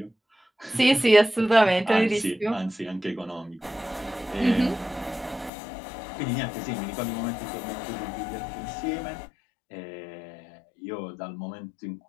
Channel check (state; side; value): drops out; right; at 5.5 s